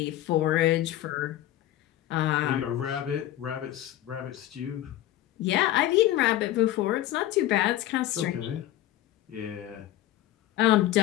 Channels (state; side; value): quieter; right; 13.8 dB